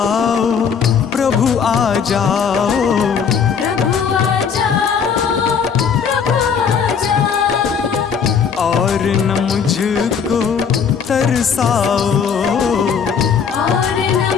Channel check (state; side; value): quieter; right; 6.7 dB